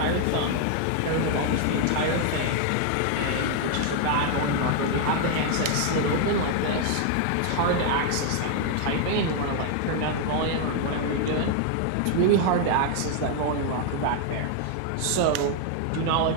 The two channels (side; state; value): both; different; correlation 0.00